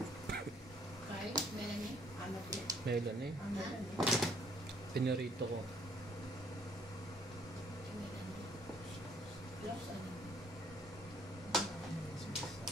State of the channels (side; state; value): both; normal; correlation 0.63